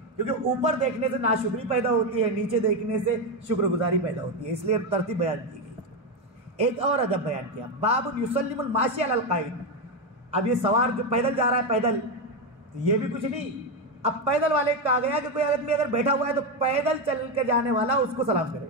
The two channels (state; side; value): normal; both; correlation 0.09